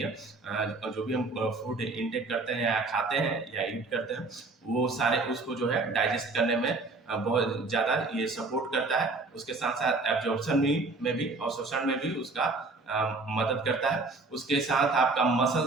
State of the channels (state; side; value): quieter; left; 3.5 dB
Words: जो भी हम फूड इंटेक करते हैं या खाते हैं या ईट करते हैं, वो सारे उसको जो है डाइजेस्ट करने में बहुत ज़्यादा ये सपोर्ट करता है। उसके साथ साथ एब्जॉर्प्शन में भी और शोषण में भी उसका मदद करता है। उसके साथ आपका